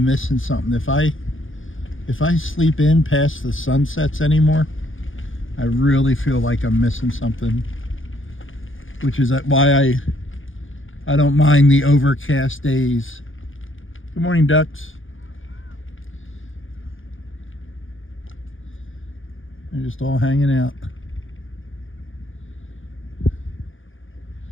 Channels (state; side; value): late; right; 0.58 ms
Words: missing something. If I sleep in past the sunsets anymore, I really feel like I'm missing something. Which is why I don't mind the overcast days. Good morning, ducks. They're just all hanging out.